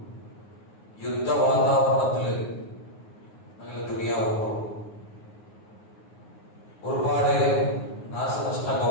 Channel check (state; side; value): late; right; 9.5 ms